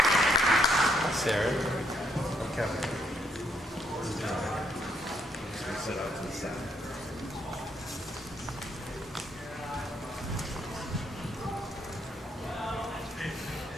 Sarah. I'm Kevin. Sit out to the side.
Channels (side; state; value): both; normal; correlation 0.72